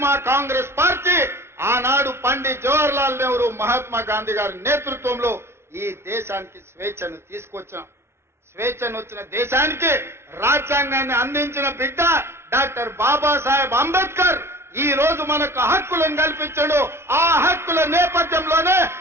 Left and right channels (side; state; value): left; late; 0.12 ms